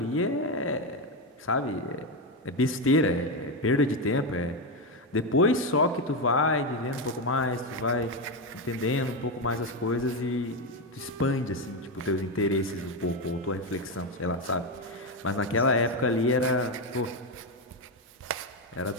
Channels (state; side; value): normal; both; correlation 0.10